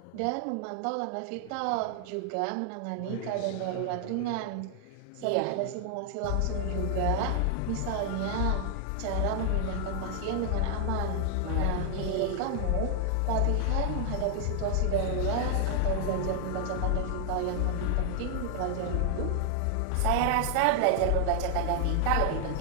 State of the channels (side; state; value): both; different; correlation 0.00